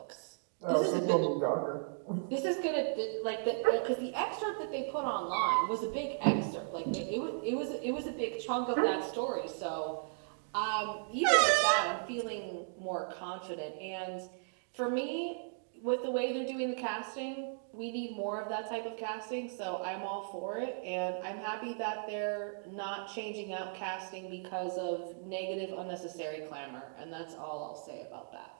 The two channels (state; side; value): silent; left; digital silence